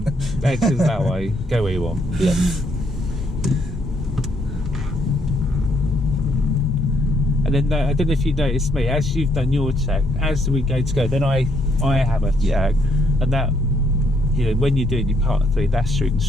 Exit that way. Go where you want. Yeah. And then I don't know if you noticed me, as you've done your check, as we go to go, then I have a check, and that, you know, when you're doing your part 3, that's your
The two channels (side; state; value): both; normal; correlation 0.72